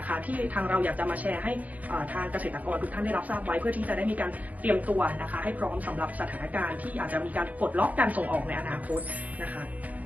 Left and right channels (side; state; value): left; late; 0.075 ms